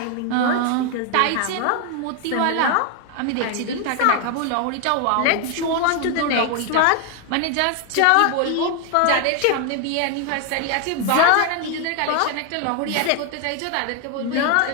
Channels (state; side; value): different; both; correlation 0.00